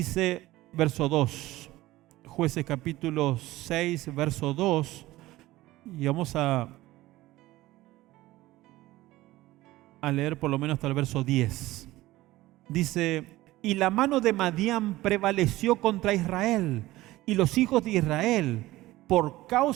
verso 2, Jueces capítulo 6, verso 2, y vamos a leer por lo menos hasta el verso 10. Dice: y la mano de Madián prevaleció contra Israel, y los hijos de Israel, por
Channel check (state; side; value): quieter; left; 17.4 dB